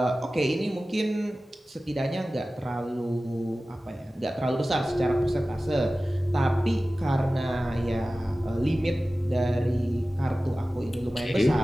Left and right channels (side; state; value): both; normal; correlation 0.96